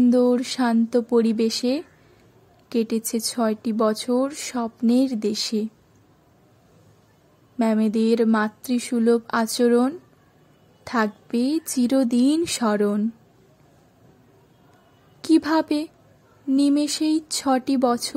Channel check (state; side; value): identical; both; correlation 1.00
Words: শান্ত পরিবেশে কেটেছে 6টি বছর স্বপ্নের দেশে। ম্যামেদের মাতৃসুলভ আচরণ থাকবে চিরদিন স্মরণ। কিভাবে নিমেষেই 6টি